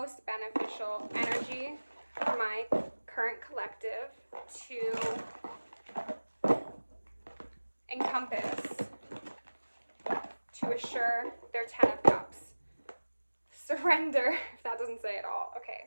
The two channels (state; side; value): inverted; both; correlation -1.00